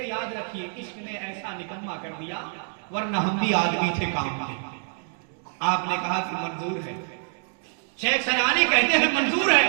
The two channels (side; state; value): left; silent; 61 dB below the other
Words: याद रखिए, इश्क ने ऐसा निकम्मा कर दिया, वरना हम भी आदमी थे काम के। आपने कहा कि मंजूर है। शेख सनानी कहते हैं मंजूर है।